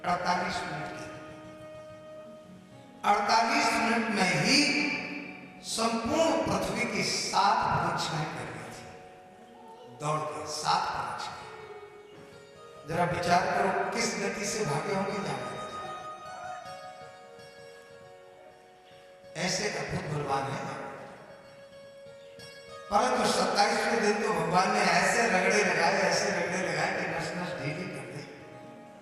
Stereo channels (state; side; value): identical; both; correlation 1.00